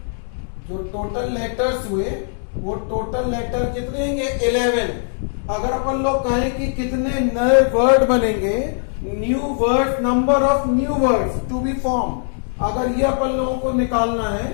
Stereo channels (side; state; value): right; silent; digital silence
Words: जो टोटल लेटर्स हुए वो टोटल लेटर कितने होंगे? 11। अगर अपन लोग कहें कि कितने नए वर्ड बनेंगे, new word, number of new words to be form, अगर ये अपन लोगों को निकालना है,